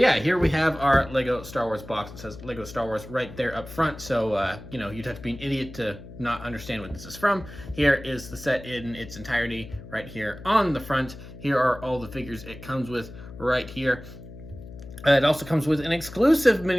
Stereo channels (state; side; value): noise; left; hum, 15 dB below the sound